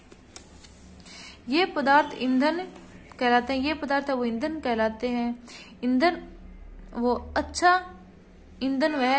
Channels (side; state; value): both; identical; correlation 1.00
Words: ये पदार्थ ईंधन कहलाते हैं। ये पदार्थ वो ईंधन कहलाते हैं। ईंधन वो अच्छा ईंधन वह